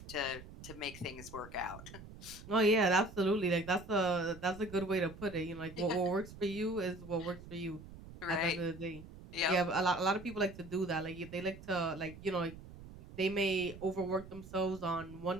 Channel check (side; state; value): right; noise; rumble, 16 dB below the sound